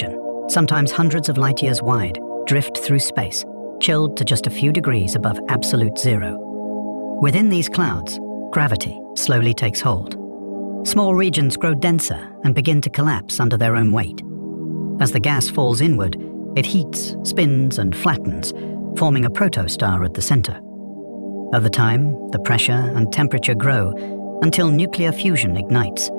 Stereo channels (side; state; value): both; inverted; correlation -1.00